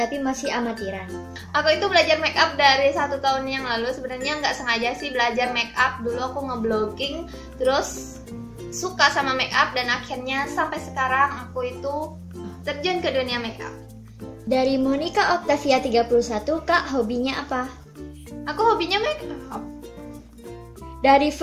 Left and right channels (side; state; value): both; identical; correlation 1.00